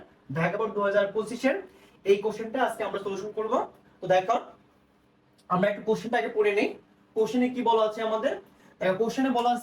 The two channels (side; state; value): both; identical; correlation 1.00